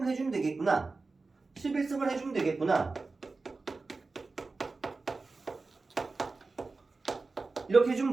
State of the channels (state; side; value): quieter; left; 3.8 dB